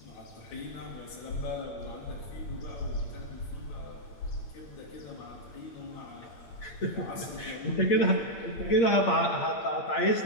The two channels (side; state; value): right; late; 8.7 ms